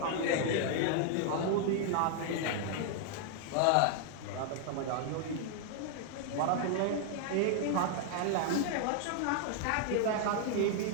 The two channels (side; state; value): both; different; correlation 0.00